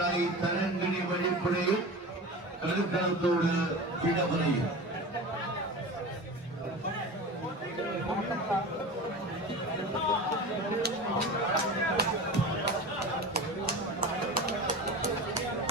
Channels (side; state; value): both; normal; correlation 0.31